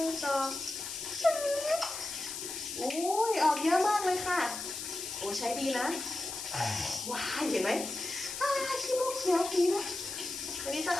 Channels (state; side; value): noise; left; hiss, 6 dB below the sound